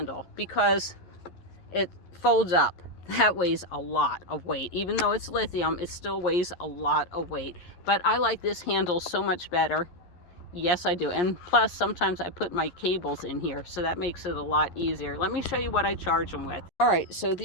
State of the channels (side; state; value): right; late; 11 ms